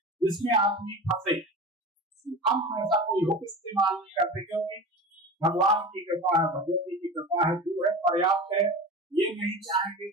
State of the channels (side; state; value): both; normal; correlation 0.32